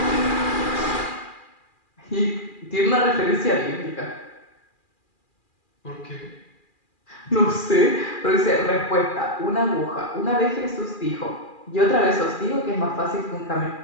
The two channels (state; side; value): late; right; 2.4 ms